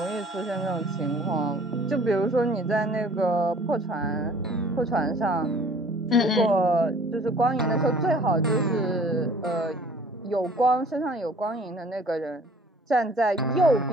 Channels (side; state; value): both; normal; correlation 0.52